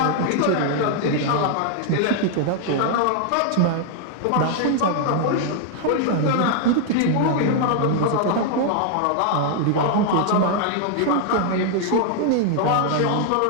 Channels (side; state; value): both; different; correlation 0.00